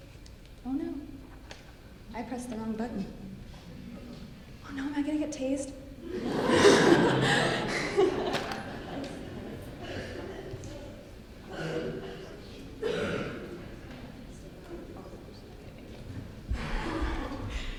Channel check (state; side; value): identical; both; correlation 1.00